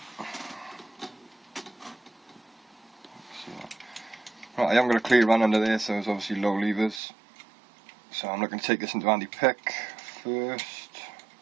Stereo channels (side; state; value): left; drops out; at 7.0 s